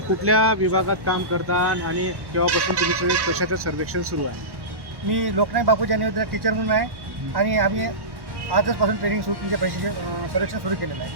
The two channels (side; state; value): left; late; 1.1 ms